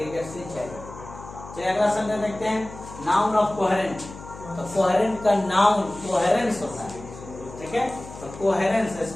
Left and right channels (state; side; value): noise; left; hum, 15 dB below the sound